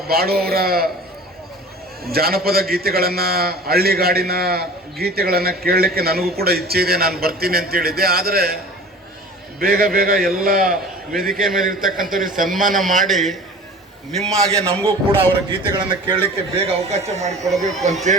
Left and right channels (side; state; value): both; normal; correlation 0.41